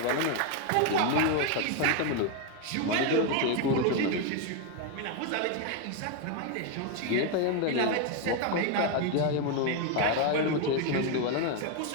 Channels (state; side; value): different; both; correlation 0.01